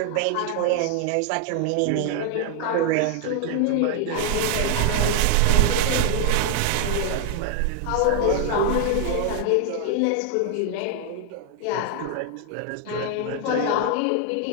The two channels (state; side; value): different; both; correlation 0.00